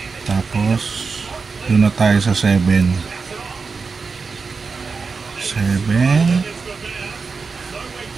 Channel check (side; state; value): left; quieter; 4.8 dB